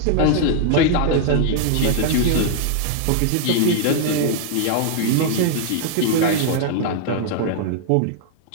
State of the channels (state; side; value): different; both; correlation -0.01